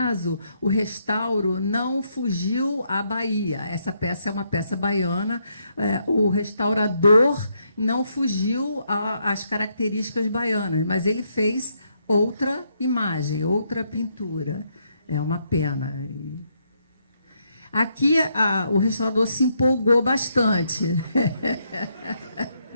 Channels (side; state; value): both; inverted; correlation -0.76